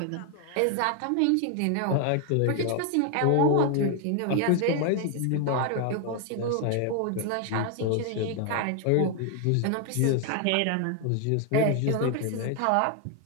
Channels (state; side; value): different; both; correlation 0.01